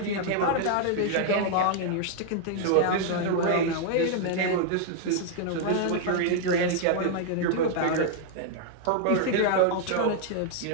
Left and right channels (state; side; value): different; both; correlation -0.01